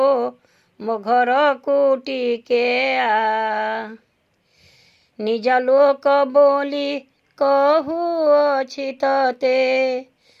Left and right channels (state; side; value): identical; both; correlation 1.00